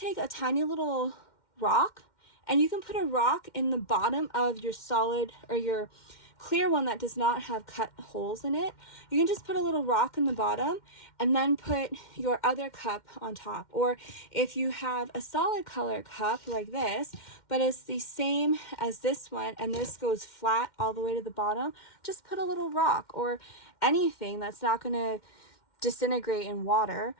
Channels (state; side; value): late; right; 2.1 ms